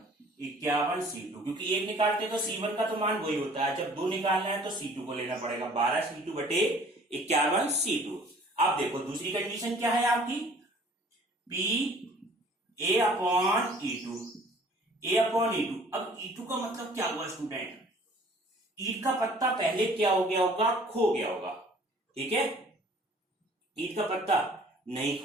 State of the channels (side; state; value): both; normal; correlation 0.52